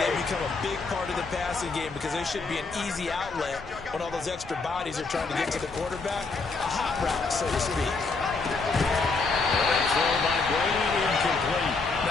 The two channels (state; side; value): quieter; right; 4.1 dB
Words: become a big part of the passing game because they should be an easy outlet when all those extra bodies are trying to get to the quarterback. A hot route, so to speak. Throw by Brady, incomplete.